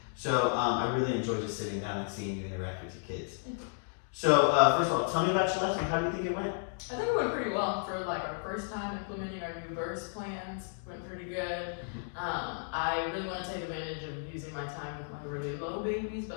So I really enjoyed just sitting down and seeing you interact with your kids. So first of all, tell me about your lesson. How do you think it went? I think it went pretty well for like our first time implementing our new verse plans. Went pretty good. I really want to take advantage of using my time with my really low babies,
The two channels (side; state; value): right; silent; digital silence